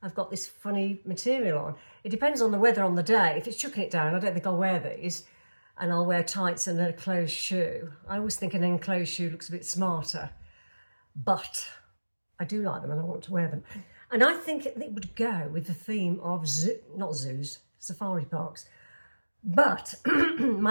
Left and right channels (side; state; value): both; inverted; correlation -1.00